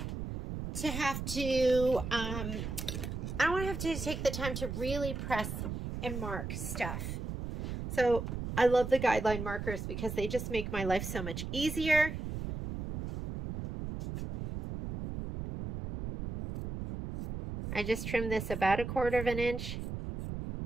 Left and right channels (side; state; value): right; noise; rumble, 5 dB below the sound